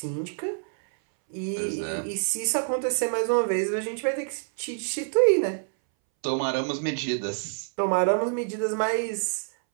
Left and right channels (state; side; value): silent; left; 60 dB below the other